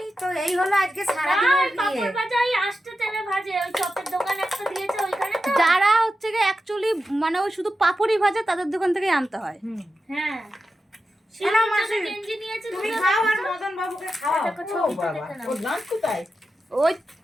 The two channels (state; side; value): normal; both; correlation 0.90